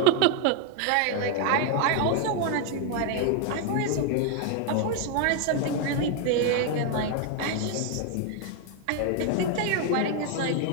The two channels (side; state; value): both; different; correlation 0.01